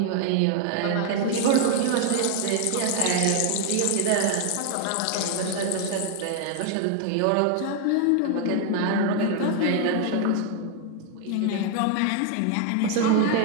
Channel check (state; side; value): different; both; correlation 0.00